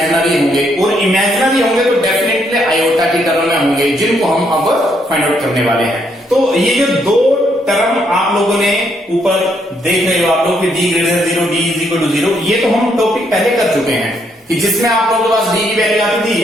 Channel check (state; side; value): normal; both; correlation 0.73